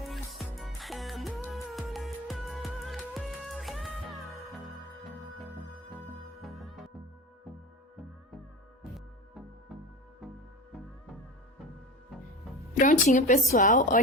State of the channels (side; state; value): both; normal; correlation 0.28